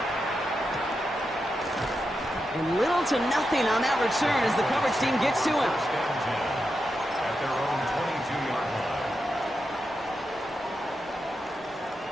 And little to nothing on that return as the coverage team gets to him. At their own 22-yard line.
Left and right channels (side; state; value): both; normal; correlation 0.87